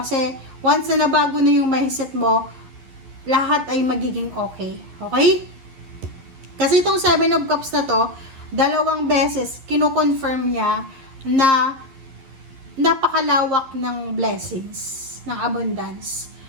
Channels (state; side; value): late; left; 11 ms